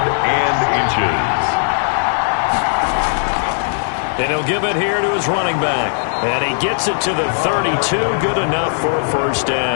and inches. And he'll give it here to his running back. And he gets it to the 32. Good enough for a 1st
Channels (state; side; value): silent; right; digital silence